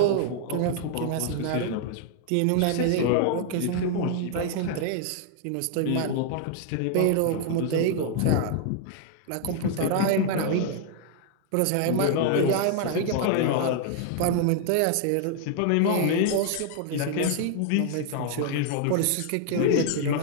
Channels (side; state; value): both; different; correlation 0.00